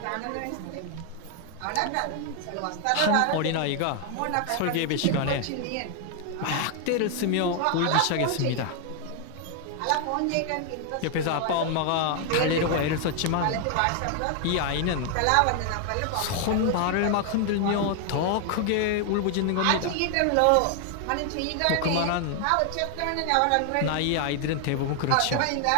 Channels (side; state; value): both; different; correlation 0.00